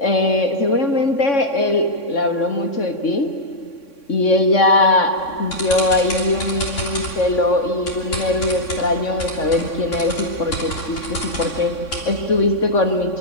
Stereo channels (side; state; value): right; late; 3.6 ms